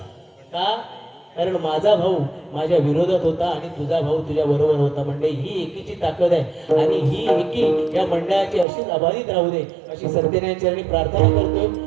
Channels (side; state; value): left; drops out; at 8.7 s